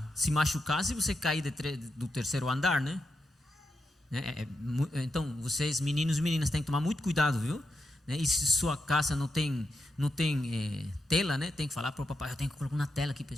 se machucar se você cair do 3º andar, né? Então, vocês, meninos e meninas, têm que tomar muito cuidado, viu? E se sua casa não tem tela, né? Tem que falar para o papai, eu tenho que colocar uma tela aqui, é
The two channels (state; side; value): normal; both; correlation 0.86